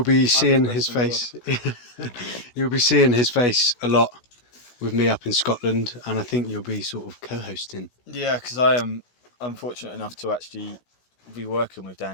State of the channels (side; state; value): right; late; 16 ms